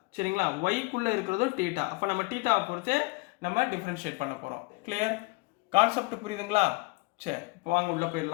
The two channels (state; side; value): quieter; right; 25.7 dB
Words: சரிங்களா, ஒய்க்குள்ளே இருக்கிறதும் தீட்டா. அப்போ நம்ம தீட்டாவை பொறுத்தே நம்ம டிஃப்ரென்ஷியேட் பண்ண போகிறோம். கிளியர், கான்செப்ட் புரியுதுங்களா. சரி, இப்போ வாங்க உள்ளே